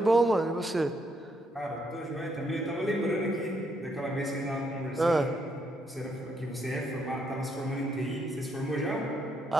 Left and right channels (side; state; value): both; normal; correlation 0.75